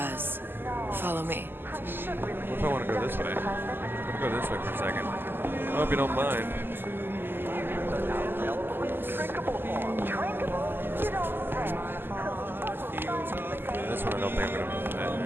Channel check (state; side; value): late; left; 0.098 ms